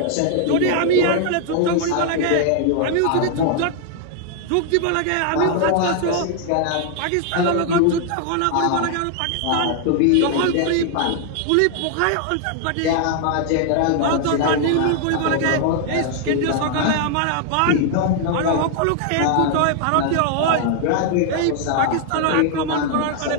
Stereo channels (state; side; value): different; both; correlation 0.00